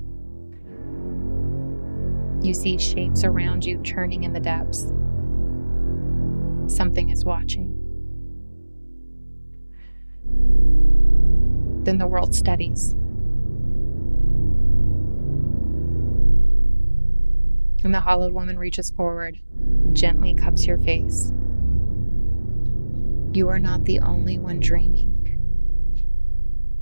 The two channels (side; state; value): both; inverted; correlation -1.00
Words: You see shapes around you turning in the depths. Something is watching. Then the world steadies. And the hollowed woman reaches forward, gently cups your face. You are not the only one dreaming.